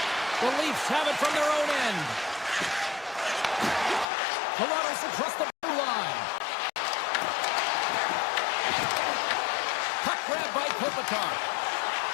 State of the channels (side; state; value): right; drops out; at 4.0 s